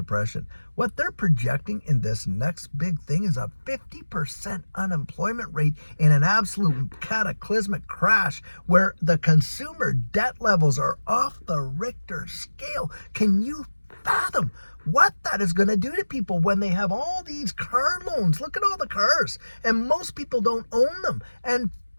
What they're projecting in this next big thing is a 50% unemployment rate in an absolute cataclysmic crash where the consumer debt levels are off the Richter scale. Can you fathom what that is going to do to people when they have all these car loans? Look at all the cars, and most people don't own them. And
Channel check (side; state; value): both; inverted; correlation -1.00